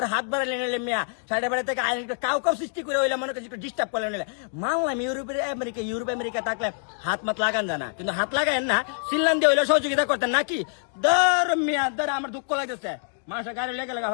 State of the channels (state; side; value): silent; right; digital silence